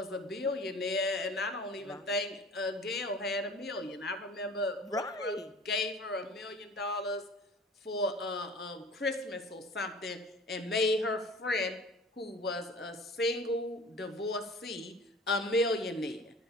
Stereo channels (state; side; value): normal; both; correlation 0.43